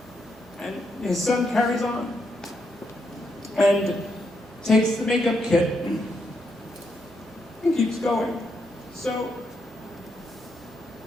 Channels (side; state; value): both; normal; correlation 0.80